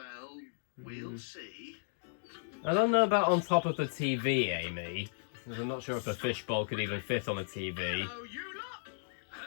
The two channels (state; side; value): silent; right; digital silence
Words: we'll see. I don't know about on top of the TV, Amy. Because I'm not sure if a fishbowl could even fit on a TV. Hello, you lot.